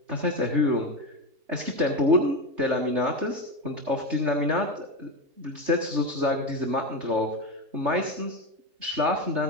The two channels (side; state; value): left; late; 3.3 ms